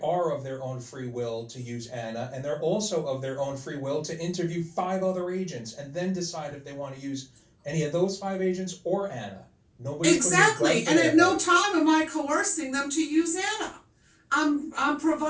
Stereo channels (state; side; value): identical; both; correlation 1.00